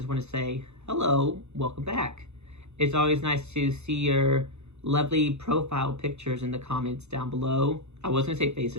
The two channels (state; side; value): late; left; 0.81 ms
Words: want to say hello, welcome back. It's always nice to see your lovely profile pictures in the comments down below. I was gonna say